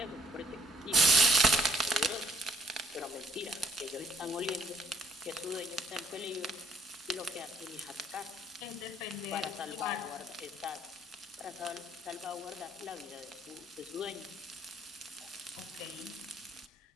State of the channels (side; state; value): both; normal; correlation 0.62